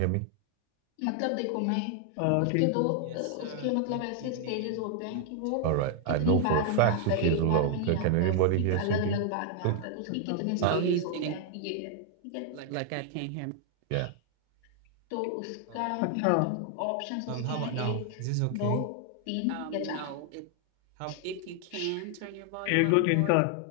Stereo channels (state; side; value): different; both; correlation 0.00